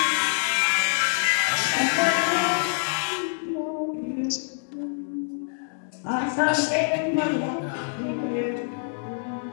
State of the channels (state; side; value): silent; right; digital silence